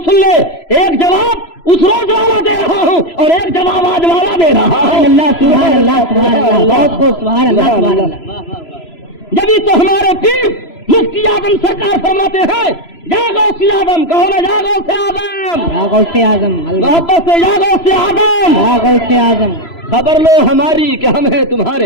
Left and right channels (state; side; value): late; right; 3.0 ms